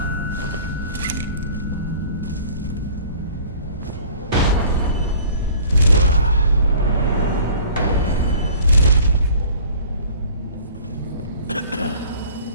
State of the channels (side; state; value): both; inverted; correlation -0.49